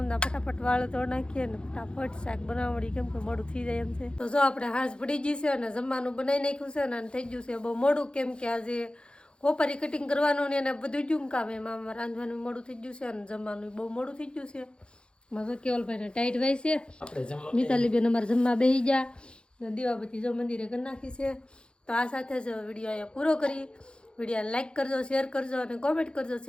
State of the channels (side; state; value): right; late; 0.053 ms